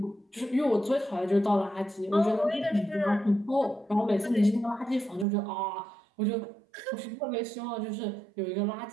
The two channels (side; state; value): left; drops out; at 5.2 s